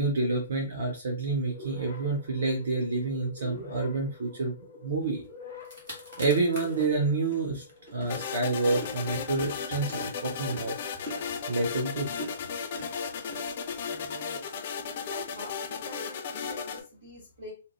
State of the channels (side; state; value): both; inverted; correlation -0.45